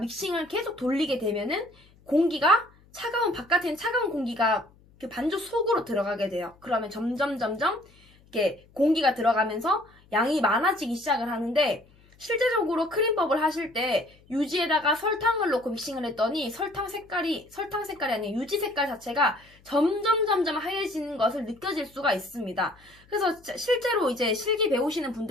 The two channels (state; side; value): noise; left; hum, 29 dB below the sound